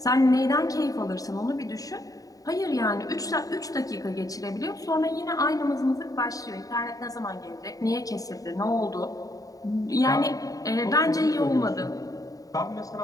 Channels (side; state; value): right; late; 0.17 ms